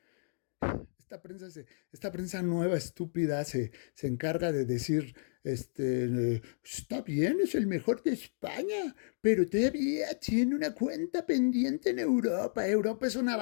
esta prensa nueva, estúpida, se encarga de decir, está bien, es el mejor de España, pero todavía tiene una cuenta pendiente en Europa. Europa es una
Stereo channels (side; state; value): right; silent; digital silence